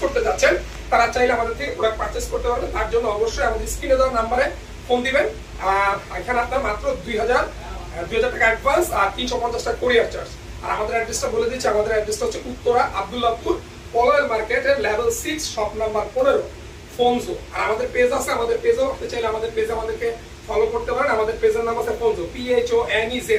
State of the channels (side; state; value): both; identical; correlation 1.00